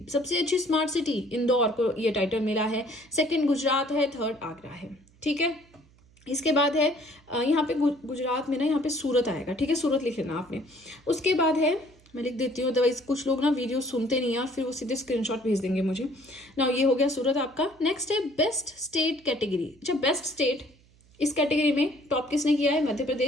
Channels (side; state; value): right; noise; hum, 29 dB below the sound